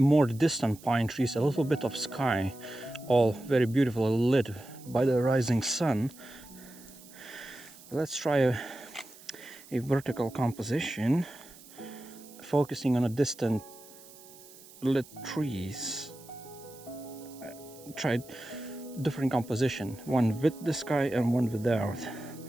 distant pine trees, a little bit of sky, all very beautifully lit by the rising sun. Let's try a vertical composition, focusing on a distant lit trees. Tried different composition, one with the sky and one without.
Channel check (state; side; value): noise; right; hiss, 21 dB below the sound